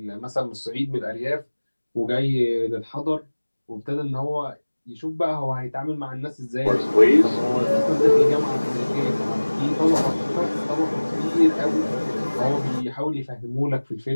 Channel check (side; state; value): both; inverted; correlation -1.00